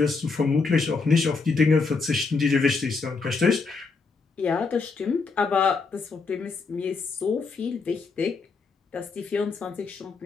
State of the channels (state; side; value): quieter; right; 4.5 dB